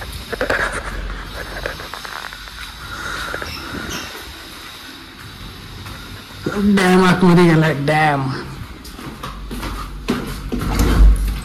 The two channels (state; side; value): identical; both; correlation 1.00